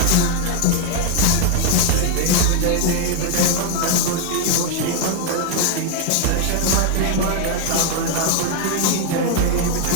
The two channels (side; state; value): both; different; correlation 0.00